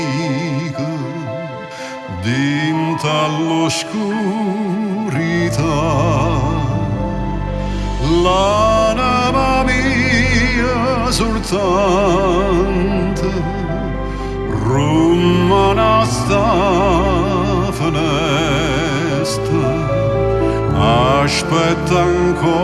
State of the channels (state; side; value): identical; both; correlation 1.00